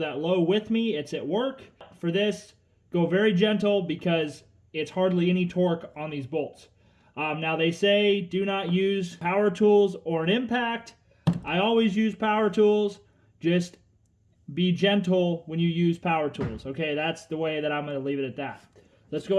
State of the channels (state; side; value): identical; both; correlation 1.00